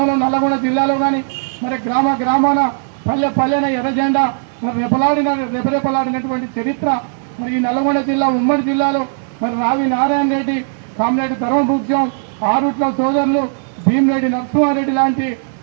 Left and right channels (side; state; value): left; silent; digital silence